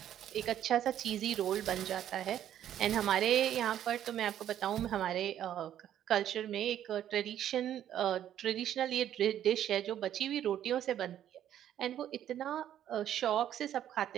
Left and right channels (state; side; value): quieter; left; 10.9 dB